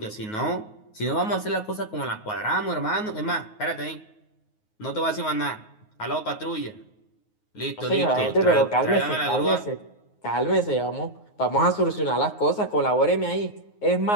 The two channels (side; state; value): right; late; 9.5 ms